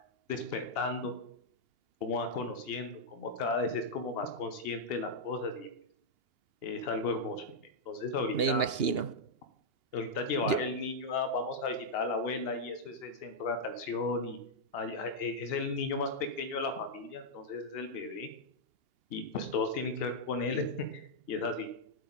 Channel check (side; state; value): left; late; 2.8 ms